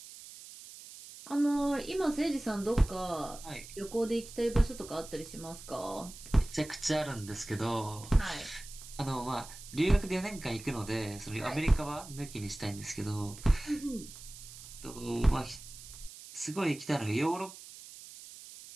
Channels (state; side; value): noise; right; hiss, 15 dB below the sound